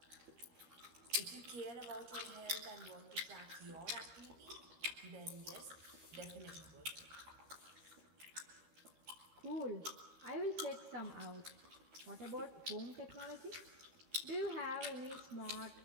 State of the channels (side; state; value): left; late; 13 ms